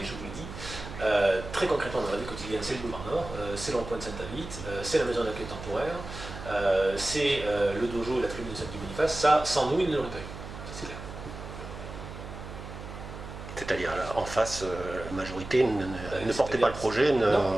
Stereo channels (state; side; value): noise; right; hum, 11 dB below the sound